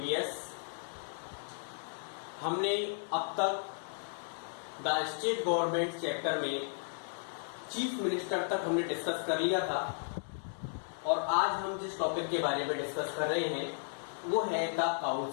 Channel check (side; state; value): right; silent; digital silence